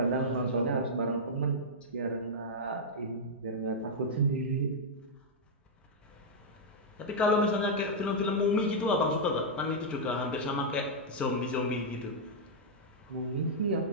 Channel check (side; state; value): both; normal; correlation -0.06